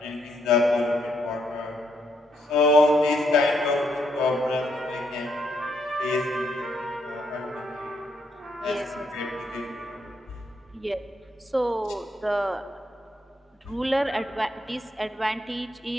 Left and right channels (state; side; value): normal; both; correlation 0.75